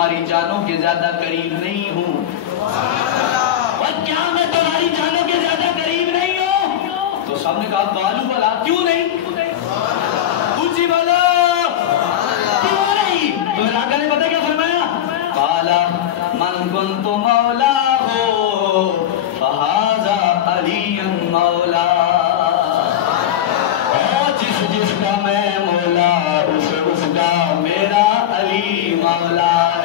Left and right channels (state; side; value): quieter; right; 10.9 dB